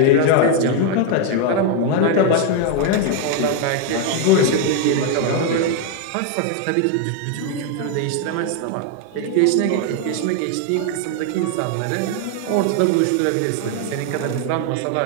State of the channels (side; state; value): both; different; correlation 0.01